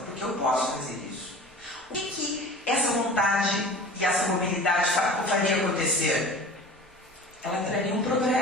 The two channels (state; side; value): normal; both; correlation 0.39